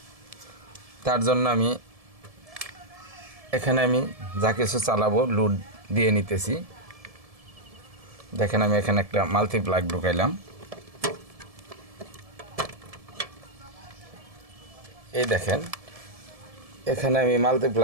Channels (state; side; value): late; left; 1.7 ms